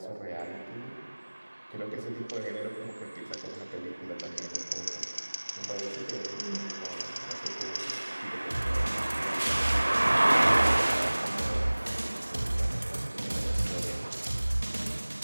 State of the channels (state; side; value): inverted; both; correlation -1.00